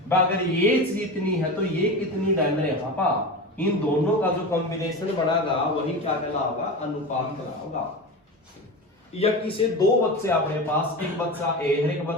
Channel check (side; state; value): both; normal; correlation 0.25